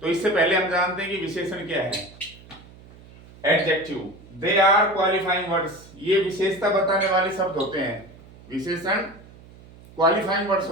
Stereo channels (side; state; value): right; noise; hum, 22 dB below the sound